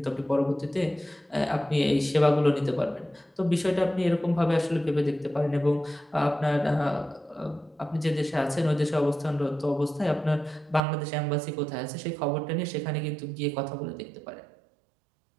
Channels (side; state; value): left; drops out; at 10.8 s